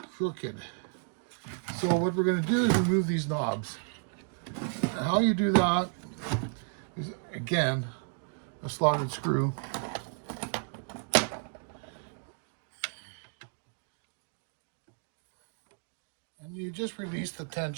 So what we're going to do is remove these knobs. And how you do that is, again, a slotted screw. And you just release the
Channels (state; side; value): silent; left; 56 dB below the other